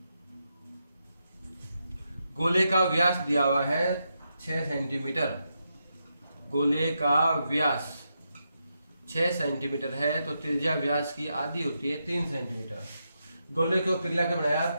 गोले का व्यास दिया हुआ है 6 सेंटीमीटर। गोले का व्यास 6 सेंटीमीटर है तो त्रिज्या व्यास की आधी होती है 3 सेंटीमीटर। गोले को पिघला के बनाया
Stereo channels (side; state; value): both; inverted; correlation -0.84